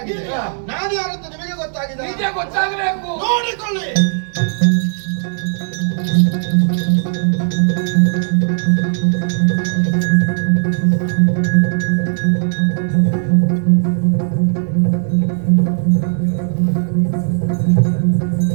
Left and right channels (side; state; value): left; silent; 69 dB below the other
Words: ನಾನು ಯಾರು ಅಂತ ನಿಮಗೆ ಗೊತ್ತಾಗಿದೆ. ನಿಜ ಗೊತ್ತಾಗಬೇಕು. ನೋಡಿಕೊಳ್ಳಿ.